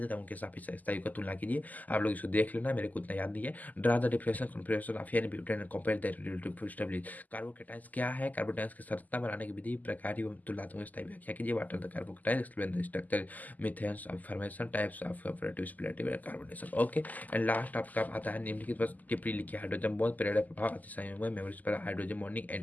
है, उनके साथ स्थायी का तुलना कीजिए। आप लोग इसको देख लेना, मेरे को उतना याद नहीं है। Draw the differential configuration of N butane and compare the relative stability. Carbocations क्या है, कार्बोकेटाइंस की संरचना बनाने की विधि, प्रकार एवं तुलनात्मक स्थायी व्याख्या कीजिए। What are the carbocations, explain the structure, methods of formation, types of operative splitting and carbonation. Okay. And last आपका आता है निम्नलिखित बस टिप्पणी लिखिए। हाइड्रोजन बॉन्ड प्रेरक प्रभाव, अतिसंयोग, मेमोरीज पर हाइड्रोजन बॉन्डिंग,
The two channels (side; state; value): right; late; 0.081 ms